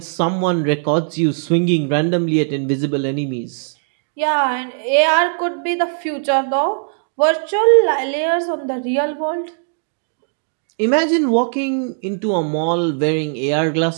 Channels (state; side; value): silent; left; digital silence